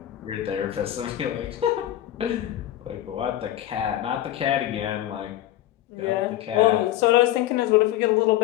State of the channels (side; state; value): right; quieter; 13.4 dB